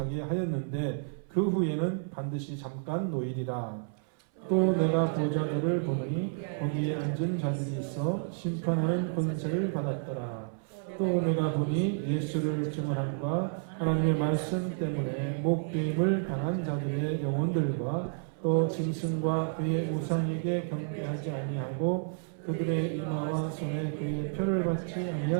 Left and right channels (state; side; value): silent; left; 57 dB below the other